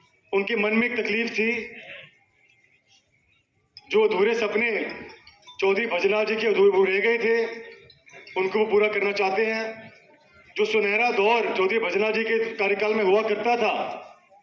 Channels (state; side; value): identical; both; correlation 1.00